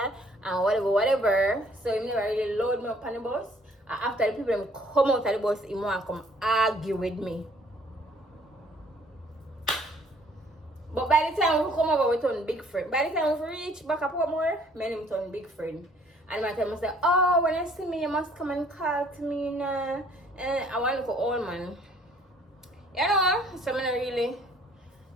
and whatever. So he never really load me up on the bus. And after the people them come out of the bus, he want to come argue with me. But by the time we come over, we turn big friend. By the time we reach back up more, me and him turn big friend. And my time I say, oh, when you see me, you must come and call to me now. And I want to look old man. You know, so I'm not really, you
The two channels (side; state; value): both; normal; correlation 0.59